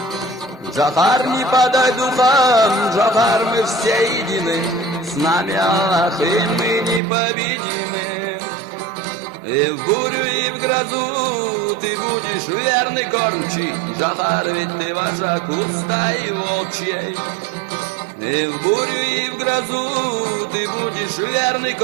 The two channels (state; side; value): drops out; left; at 7.0 s